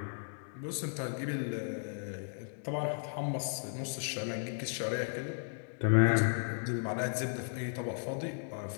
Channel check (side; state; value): right; silent; digital silence